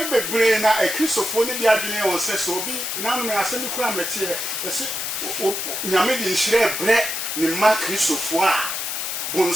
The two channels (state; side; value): noise; left; hiss, 3 dB below the sound